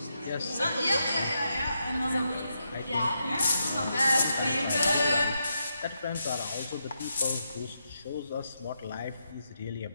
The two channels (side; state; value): both; inverted; correlation -0.83